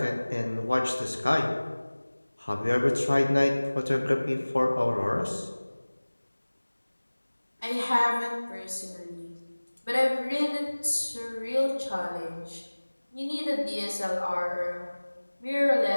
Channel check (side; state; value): both; inverted; correlation -1.00